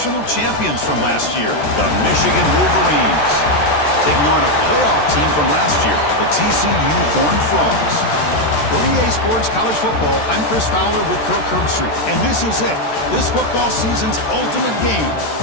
champions from last year, the Michigan Wolverines, taking on a playoff team from last year, the TCU Horned Frogs. For EA Sports College Football, I'm Chris Fowler with Kirk Herbstreit, and this is it, this football season's ultimate game.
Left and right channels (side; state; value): right; late; 13 ms